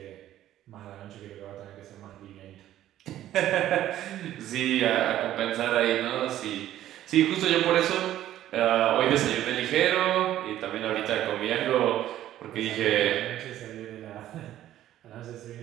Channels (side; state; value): left; quieter; 12.8 dB